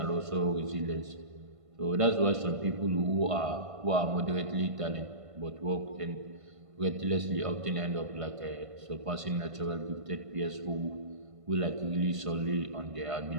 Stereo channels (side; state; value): left; late; 1.5 ms